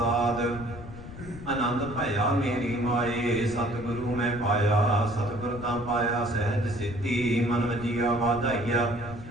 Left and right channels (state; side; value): noise; left; rumble, 13 dB below the sound